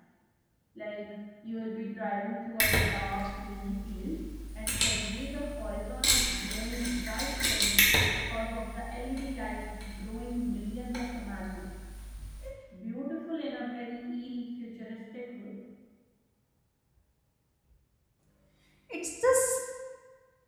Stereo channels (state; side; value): identical; both; correlation 1.00